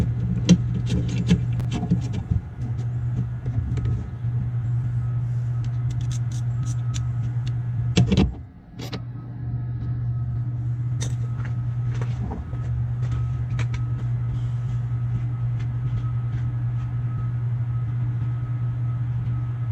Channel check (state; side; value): identical; both; correlation 1.00